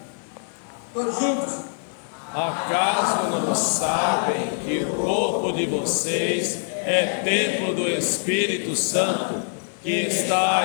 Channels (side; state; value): right; silent; 61 dB below the other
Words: Todos juntos. Acaso não sabem que o corpo de vocês é templo do Espírito Santo que